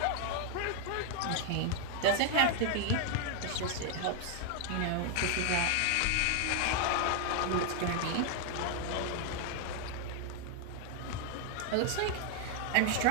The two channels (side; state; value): both; different; correlation 0.00